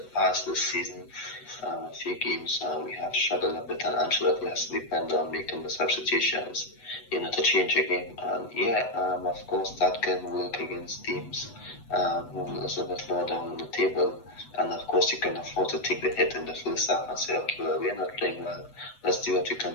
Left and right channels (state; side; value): late; right; 8.1 ms